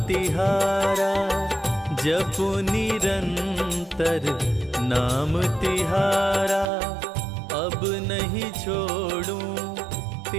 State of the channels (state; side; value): drops out; left; at 6.7 s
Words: तिहारा, जपु निरंतर नाम तिहारा, अब नहीं छोड़ूं